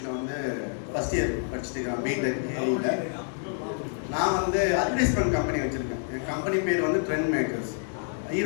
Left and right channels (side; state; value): right; silent; digital silence